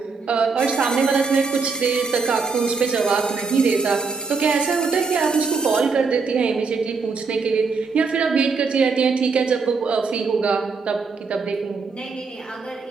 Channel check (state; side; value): quieter; left; 4.8 dB